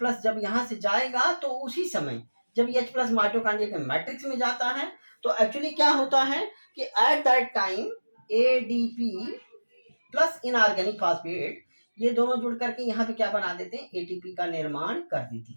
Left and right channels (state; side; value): inverted; both; correlation -1.00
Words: जब यहाँ से जाएगा तो उसी समय जब H+ माइटोकांड्रिया के मैट्रिक्स में जाता है तो एक्चुअली क्या होता है कि at that time ADP plus inorganic phosphate ये दोनों जुड़ करके यहाँ पे क्या बना देते हैं एटीपी का निर्माण कर देती